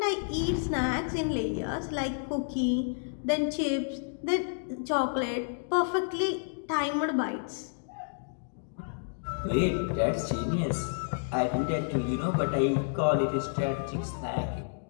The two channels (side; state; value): right; silent; digital silence